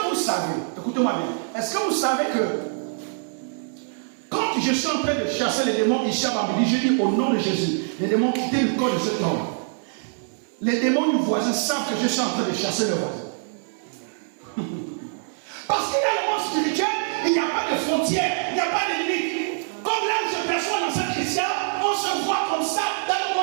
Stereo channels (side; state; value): left; silent; digital silence